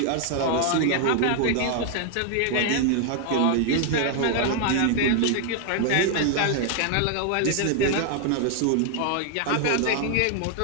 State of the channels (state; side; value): different; both; correlation 0.00